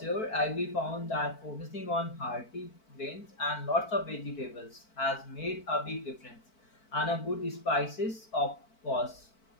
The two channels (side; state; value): right; late; 4.5 ms